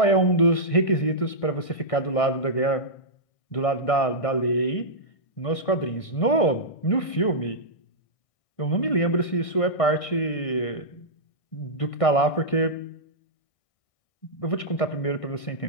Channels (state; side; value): late; right; 1.6 ms